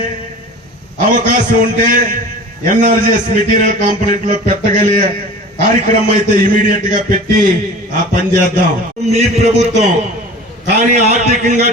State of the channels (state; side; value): normal; both; correlation 0.39